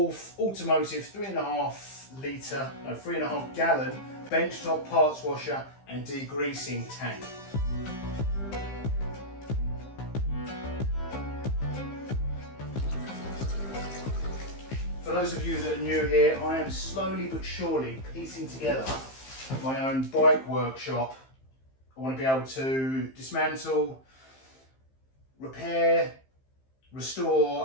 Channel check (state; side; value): late; right; 15 ms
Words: Automotive 3.5 gallon benchtop parts washer and degreasing tank. For those of you that are new here, I am slowly but surely piecing together my own bike workshop. I want to be able to dismantle, repair,